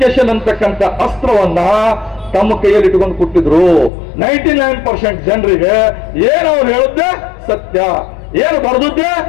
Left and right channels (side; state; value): right; drops out; at 3.9 s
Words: ಅಂತಕ್ಕಂಥ ಅಸ್ತ್ರವನ್ನ ತಮ್ಮ ಕೈಯಲ್ಲಿ ಇಟ್ಕೊಂಡು ಕೊಟ್ಟಿದ್ರು. 99% ಜನರಿಗೆ ಏನು ಅವ್ರು ಹೇಳಿದ್ದೆ ಸತ್ಯ, ಏನು ಬರೆದಿದ್ದೆ